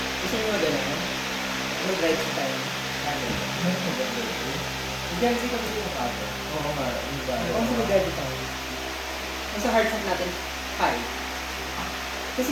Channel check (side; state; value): both; identical; correlation 1.00